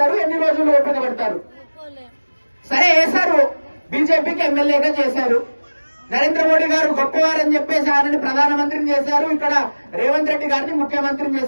ఎన్ని రోజులు ఓపిక పడతారు? సరే వేశారు, బీజేపీకి ఎమ్మెల్యేగా చేశారు. నరేంద్ర మోడీ గారు గొప్పవారని చెప్పేసి ఆయనని ప్రధానమంత్రిని చేశారు. ఇక్కడ రేవంత్ రెడ్డి గారిని ముఖ్యమంత్రిని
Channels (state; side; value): inverted; both; correlation -1.00